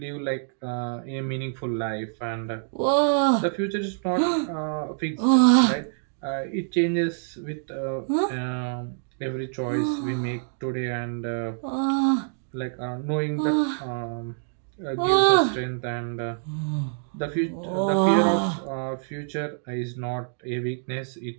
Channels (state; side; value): silent; left; digital silence